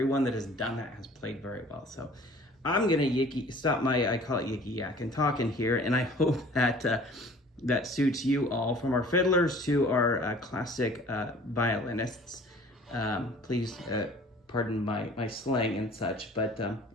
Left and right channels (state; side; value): normal; both; correlation 0.49